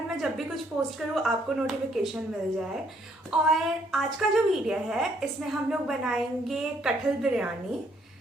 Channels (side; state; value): both; normal; correlation 0.68